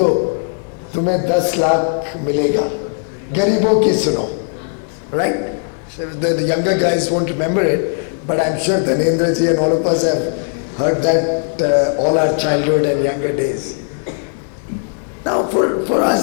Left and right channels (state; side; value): silent; right; 68 dB below the other